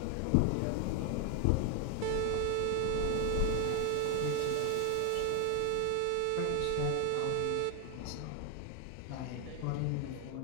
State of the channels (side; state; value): both; different; correlation 0.01